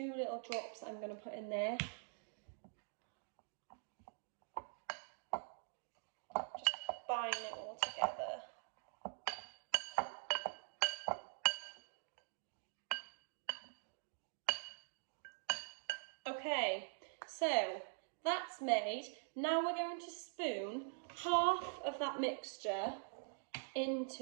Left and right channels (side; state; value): left; silent; digital silence